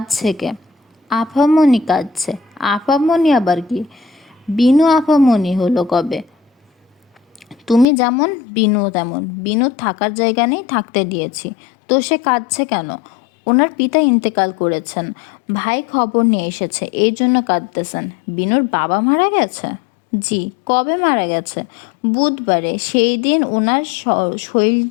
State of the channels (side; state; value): right; drops out; at 7.9 s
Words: কে? আপামনি কাঁদছে। আপামনি আবার কি? বিনু আপামনি হলো কবে? তুমি যেমন বিনু তেমন। বিনুর থাকার জায়গা নেই, থাকতে দিয়েছি। তো সে কাঁদছে কেন? ওনার পিতা ইন্তেকাল করেছেন, ভাই খবর নিয়ে এসেছে, এই জন্য কাঁদতেছেন। বিনুর বাবা মারা গেছে? জি। কবে মারা গেছে? বুধবারে। সেই দিন ওনার